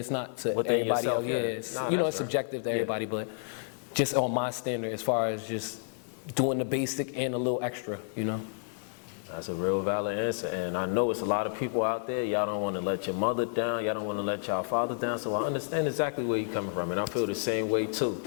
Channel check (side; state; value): right; silent; 57 dB below the other